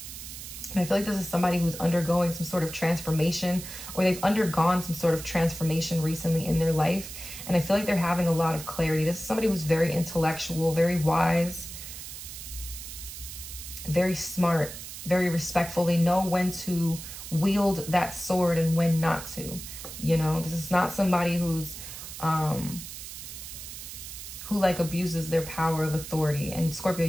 And I feel like this is somebody who's undergoing some sort of transformation, or they've undergone some sort of transformation recently in their life. And I feel like they're having a lot of clarity. This is somebody who's very intellectual, very wise, very smart, very respectful. They know when to wield that sword and when not to. You know, this is not somebody who's who like abuses their power of authority. And Scorpio,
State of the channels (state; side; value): noise; right; hiss, 11 dB below the sound